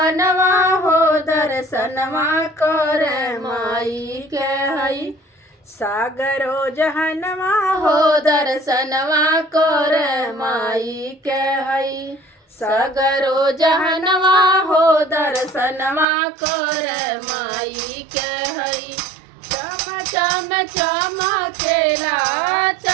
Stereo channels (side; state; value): left; drops out; at 16.1 s